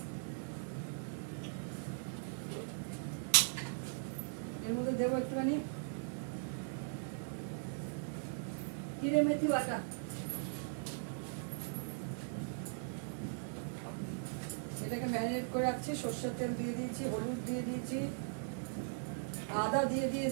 এর মধ্যে দেবো একটুখানি জিরে মেথি বাটা, এটাকে ম্যারিনেট করে রাখছি। সর্ষের তেল দিয়ে দিয়েছি, হলুদ দিয়ে দিয়েছি, আদা দিয়ে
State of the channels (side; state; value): left; silent; digital silence